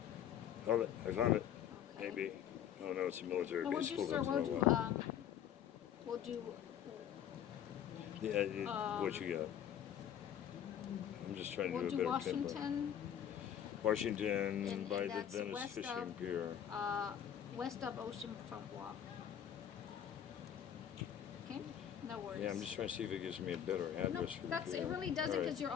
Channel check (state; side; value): quieter; right; 9.7 dB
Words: Hold it. I found it. Okay. Maybe. Oh no, it's a military No, base. we'll do, sir, we'll do, What you got? I'm just trying to we'll do do a better pin drop. Washington And by the that's Venice west Fishing of- Pier. west of Oceanfront Walk. Okay, no worries. Yeah, I'm just trying to see if it gives me a better No, address for the that's, pier. it really doesn't, All right. because you're